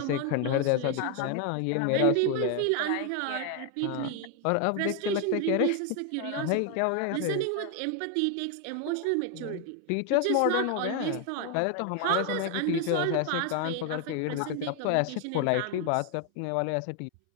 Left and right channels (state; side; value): different; both; correlation 0.01